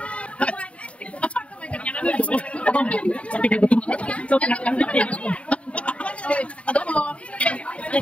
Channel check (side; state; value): right; late; 0.063 ms